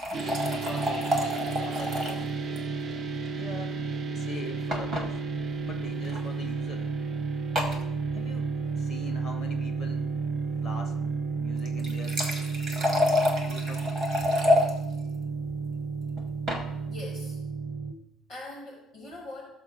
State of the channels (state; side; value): normal; both; correlation 0.70